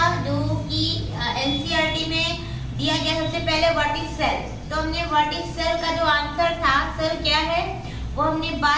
जो कि एनसीईआरटी में दिया गया सबसे पहले व्हाट इज सेल। तो हमने व्हाट इज सेल का जो आंसर था, सेल क्या है, वो हमने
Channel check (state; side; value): identical; both; correlation 1.00